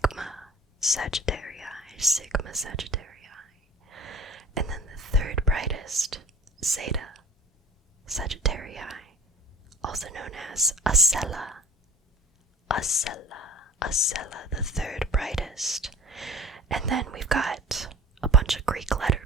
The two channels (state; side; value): normal; both; correlation 0.43